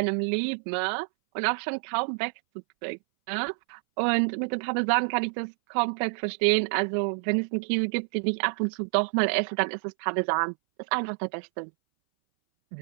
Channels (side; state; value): left; silent; 59 dB below the other